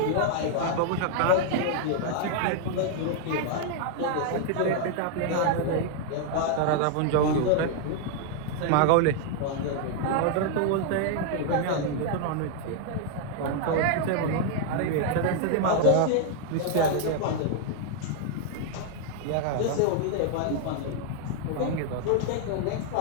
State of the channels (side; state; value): both; different; correlation 0.00